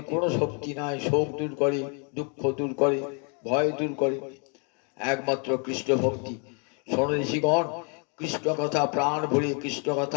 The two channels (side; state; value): right; quieter; 37.0 dB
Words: কোনো শক্তি নাই শোক দূর করে, দুঃখ দূর করে, ভয় দূর করে, একমাত্র কৃষ্ণ ভক্তি। শোনো ঋষিগণ, কৃষ্ণ কথা প্রাণ ভরে কৃষ্ণ